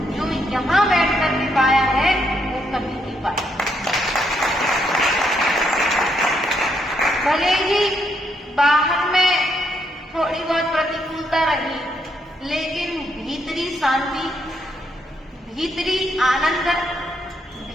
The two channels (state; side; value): normal; both; correlation 0.76